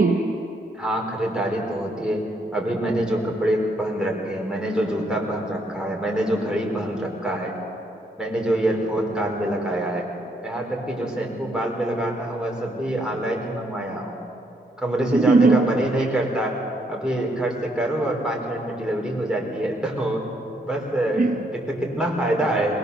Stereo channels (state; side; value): normal; both; correlation 0.72